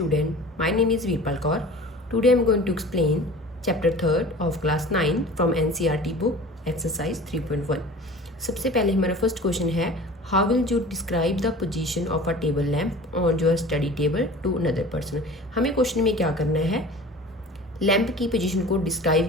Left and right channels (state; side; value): normal; both; correlation 0.40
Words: My name is Veerpal Kaur. Today I am going to explain chapter 3rd of class 9 from NCERT book exercise 3.1. सबसे पहले हमारा first question है, how will you describe the position of a table lamp on your study table to another person. हमें question में क्या करना है, lamp की पोजीशन को